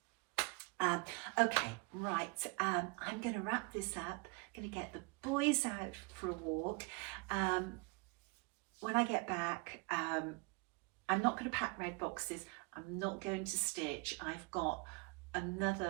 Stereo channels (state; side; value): quieter; left; 29.3 dB